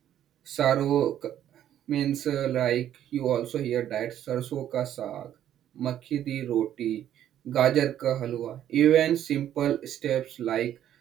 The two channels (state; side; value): quieter; left; 11.0 dB